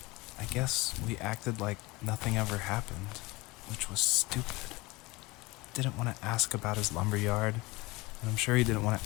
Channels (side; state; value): right; quieter; 22.8 dB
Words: I guess we acted like nothing ever happened, which was stupid. Didn't want to ask about his lumberyard, and I'm sure he didn't want